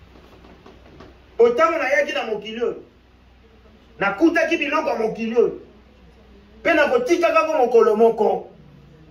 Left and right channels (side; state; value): both; identical; correlation 1.00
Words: Autant na yaki na mokilio. Na kuta ki biloko mokilio. Pe na kotika kako mokolo moko.